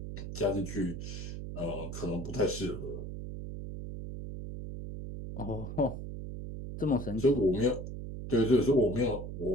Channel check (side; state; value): right; noise; hum, 7 dB below the sound